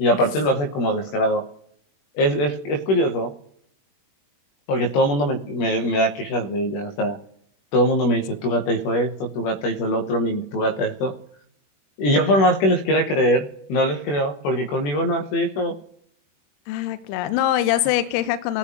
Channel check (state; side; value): late; right; 21 ms